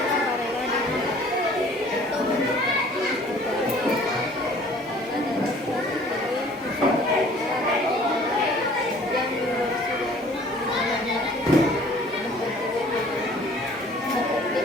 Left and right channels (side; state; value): both; normal; correlation 0.52